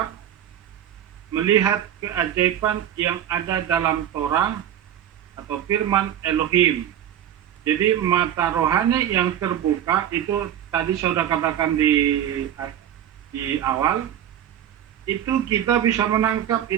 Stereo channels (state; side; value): quieter; left; 10.4 dB